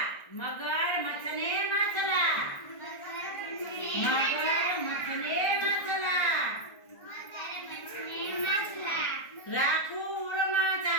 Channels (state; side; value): late; right; 1.4 ms